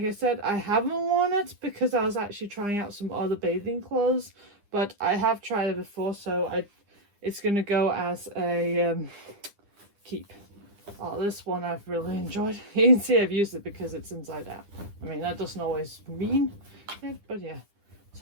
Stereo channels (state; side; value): late; left; 9.9 ms